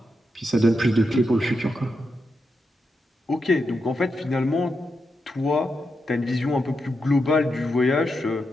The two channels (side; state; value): both; normal; correlation 0.85